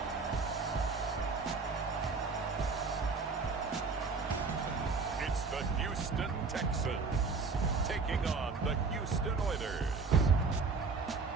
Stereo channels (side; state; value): left; quieter; 4.5 dB